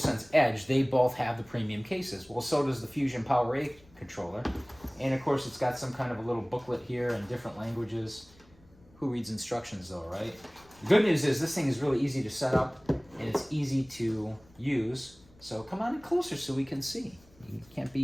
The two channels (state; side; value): noise; left; rumble, 27 dB below the sound